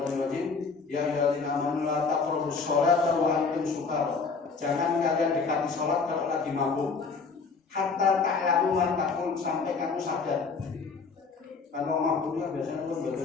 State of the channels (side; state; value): right; quieter; 4.8 dB